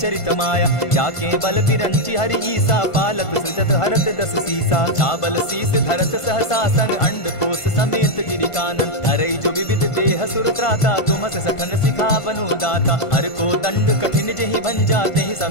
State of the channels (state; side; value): late; right; 1.5 ms